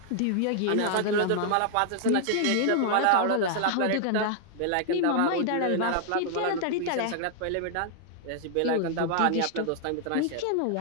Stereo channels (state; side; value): different; both; correlation 0.00